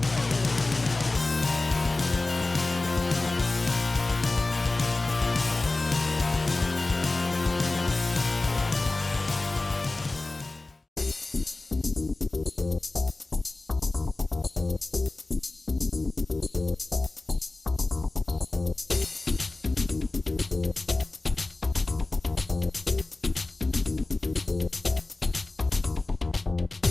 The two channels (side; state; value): right; quieter; 3.1 dB